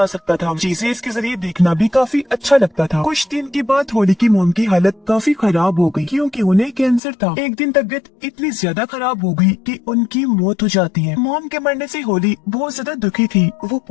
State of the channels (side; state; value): right; drops out; at 7.0 s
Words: सकता था। चीजें इसके जरिए देखना भी काफी अच्छा लगता था। कुछ दिन के बाद होली की मॉम की हालत काफी खराब हो गई क्योंकि उन्हें कैंसर था। एक दिन तबीयत इतनी ज्यादा खराब हो गई कि उनकी मौत हो जाती है। मॉम के मरने से होली बहुत ज्यादा दुखी थी, वो